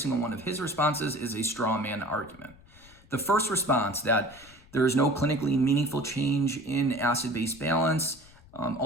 one of his responses is a straw man argument. The first response, that there is no clinically meaningful change in acid-base balance,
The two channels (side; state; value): left; noise; rumble, 25 dB below the sound